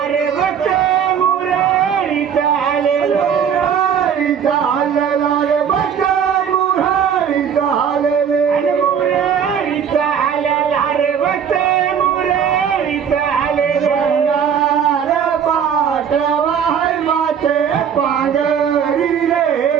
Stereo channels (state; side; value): quieter; left; 7.8 dB